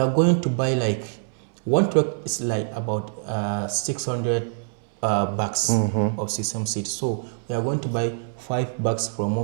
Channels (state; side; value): silent; left; 62 dB below the other